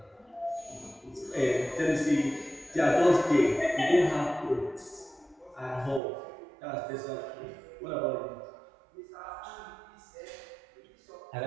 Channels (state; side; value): drops out; left; at 6.0 s